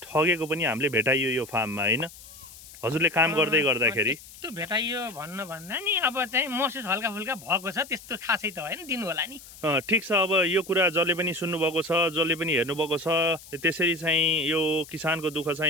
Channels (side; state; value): left; noise; hiss, 18 dB below the sound